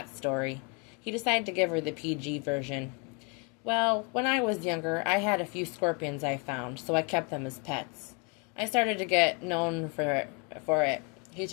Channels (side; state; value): right; quieter; 32.9 dB